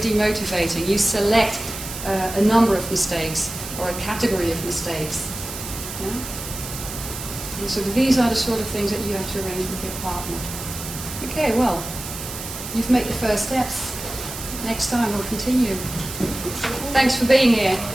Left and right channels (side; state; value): right; noise; hiss, 9 dB below the sound